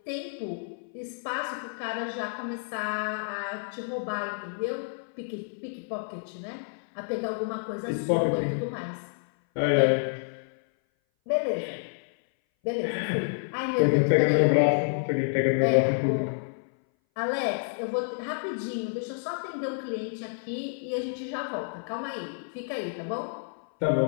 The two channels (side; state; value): right; silent; 58 dB below the other